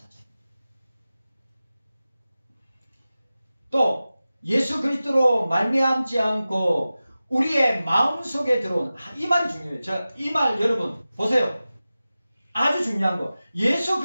또 예수 그리스도로 말미암지 않고 우리의 마음속에 들어온 이 말이 중요해요. 자, 이 말 여러분 보세요. 아주 중요한 거. 예수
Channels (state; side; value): inverted; both; correlation -0.95